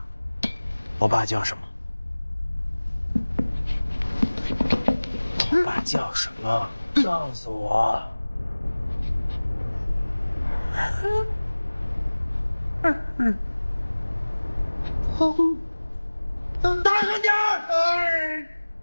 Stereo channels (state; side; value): inverted; both; correlation -1.00